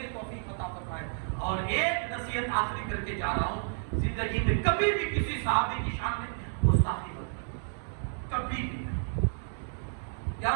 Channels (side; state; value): left; silent; digital silence